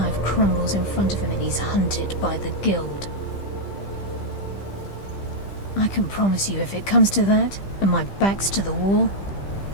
crumbles in front of him and he's hunted by the Guild. I can promise you, if it comes to that, and my back's to the wall,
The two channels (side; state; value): right; late; 15 ms